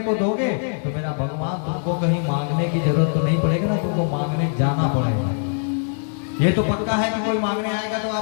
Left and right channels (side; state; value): right; silent; 64 dB below the other